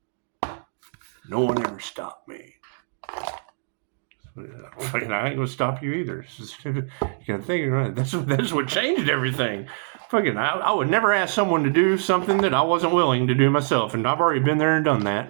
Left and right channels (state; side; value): silent; left; digital silence